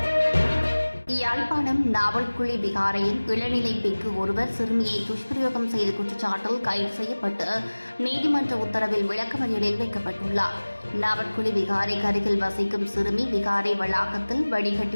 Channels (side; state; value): both; inverted; correlation -1.00